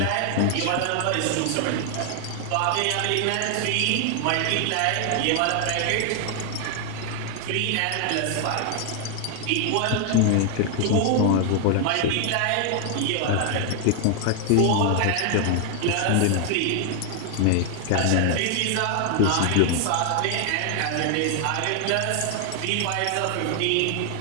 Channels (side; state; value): both; different; correlation 0.00